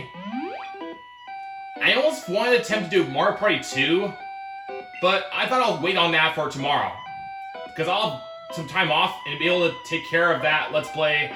I almost wanted to attempt to do Mario Party 2, but I thought I'll wait on that for tomorrow. Because I'll have some time off and be able to take care of that Let's Play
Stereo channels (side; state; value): both; identical; correlation 1.00